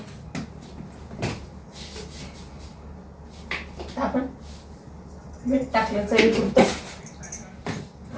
आपण मीठ टाकलं चवीपुरतं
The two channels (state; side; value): identical; both; correlation 1.00